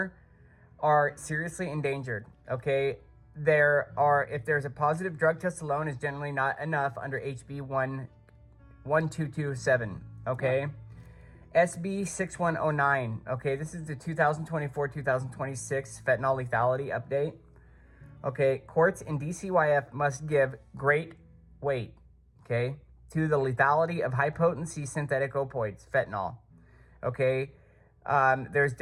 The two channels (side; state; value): both; identical; correlation 1.00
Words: are seriously endangered. Okay, if there's a positive drug test alone is generally not enough under HB 1227. Okay. SB 6109. Okay, this is the 2024-2026 fentanyl lethality update. Okay, courts in DCYF must give great weight, okay, to the lethality of high-potency synthetic opioids, fentanyl. Okay, there's